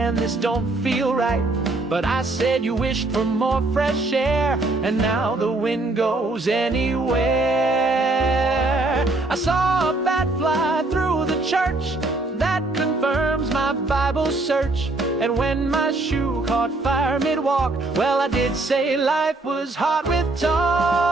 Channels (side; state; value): left; quieter; 3.0 dB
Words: this don't feel right. But I said you wished for more fresh air, and now the wind goes anywhere. I saw a bat fly through the church, that confirms my Bible search. And when my shoe caught fire mid-walk, well, I did say life was hard with talk.